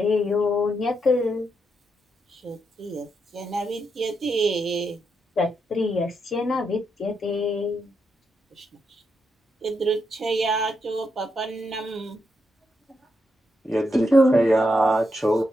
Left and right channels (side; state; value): both; normal; correlation 0.82